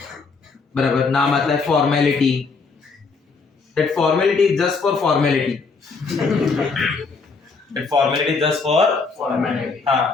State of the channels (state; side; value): quieter; right; 4.6 dB